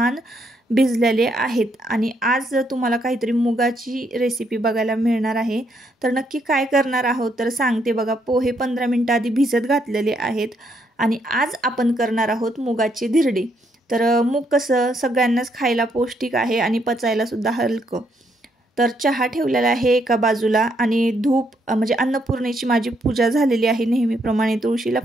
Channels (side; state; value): both; normal; correlation 0.74